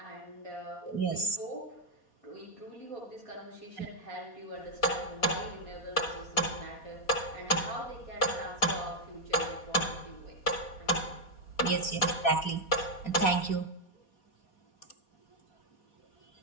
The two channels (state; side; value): late; right; 4.2 ms